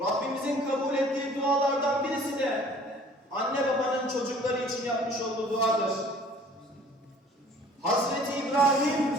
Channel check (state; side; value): normal; both; correlation 0.52